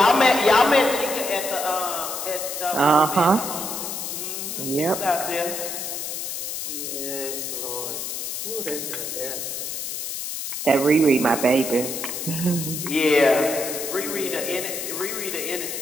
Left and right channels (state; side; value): noise; left; hiss, 5 dB below the sound